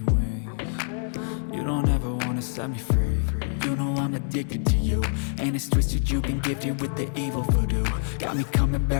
wings. You don't ever wanna set me free. You know I'm addicted to you, and it's twisted, you've been gifted with the evil voodoo. Got me coming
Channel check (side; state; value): right; silent; 61 dB below the other